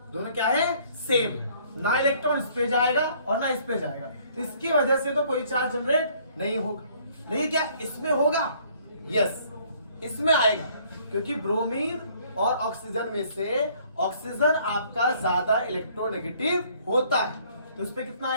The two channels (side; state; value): both; inverted; correlation -0.60